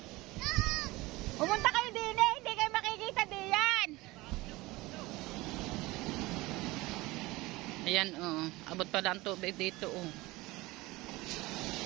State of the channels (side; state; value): left; quieter; 20.7 dB